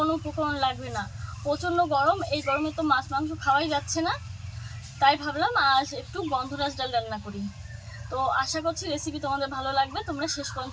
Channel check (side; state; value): both; identical; correlation 1.00